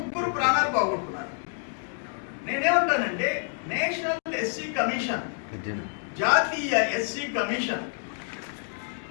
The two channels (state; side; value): silent; right; 59 dB below the other